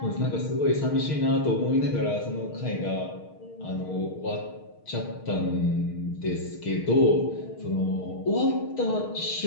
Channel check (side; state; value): right; late; 6.5 ms